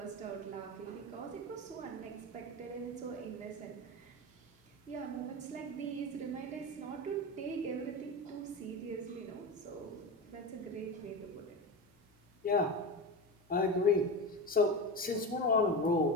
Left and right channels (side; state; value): both; normal; correlation 0.23